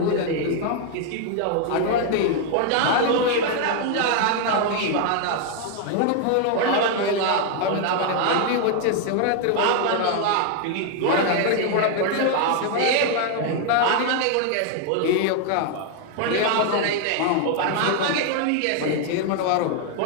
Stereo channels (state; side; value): different; both; correlation 0.00